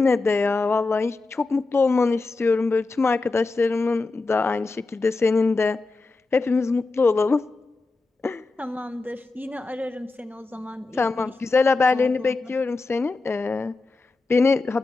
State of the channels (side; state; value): right; quieter; 3.6 dB